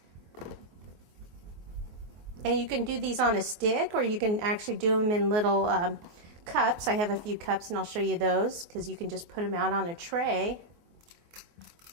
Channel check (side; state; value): left; late; 24 ms